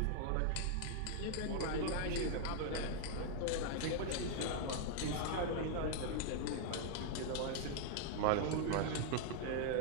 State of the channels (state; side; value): different; both; correlation 0.00